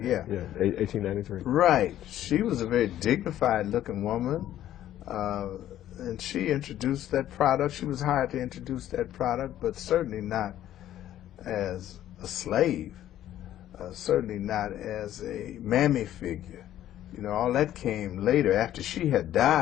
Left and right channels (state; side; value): quieter; right; 12.3 dB